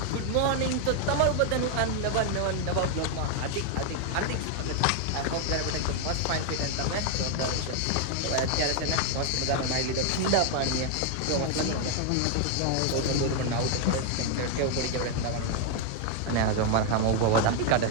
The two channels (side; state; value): both; different; correlation 0.00